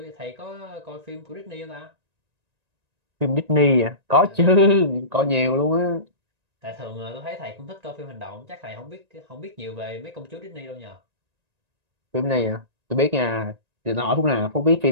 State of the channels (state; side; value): late; left; 1.9 ms